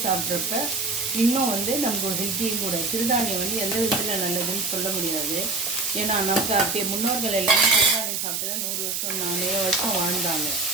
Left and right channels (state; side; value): noise; right; hiss, 1 dB below the sound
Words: சாப்பிட்றப்ப இன்னும் வந்து நமக்கு ஒரு ஹெல்த்தியும் கூட. சிறுதானியம் வந்து எந்த விதத்தில் நல்லதுன்னு சொல்ல முடியாது. ஏன்னா நமக்கு அப்படியே முன்னோர்கள் எல்லாமே சிறுதானியம் சாப்பிட்டு தான் 100 வருஷம் 4 வருஷம் வாழ்ந்தாங்க.